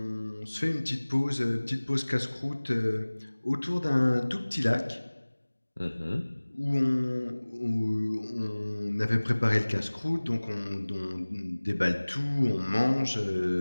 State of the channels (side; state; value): both; inverted; correlation -1.00